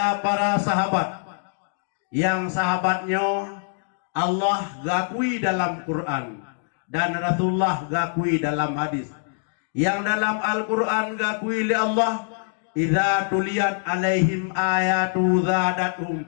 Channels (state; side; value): silent; right; digital silence